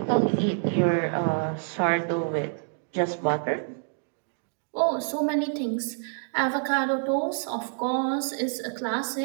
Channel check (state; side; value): silent; left; digital silence